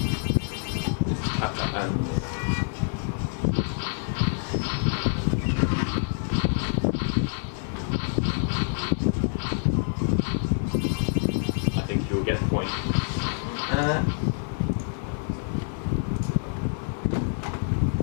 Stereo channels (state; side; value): silent; right; 60 dB below the other